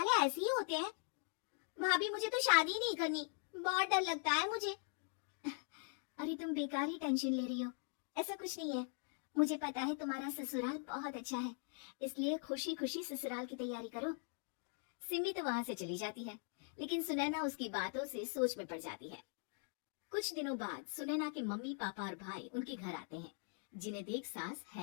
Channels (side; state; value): right; silent; 50 dB below the other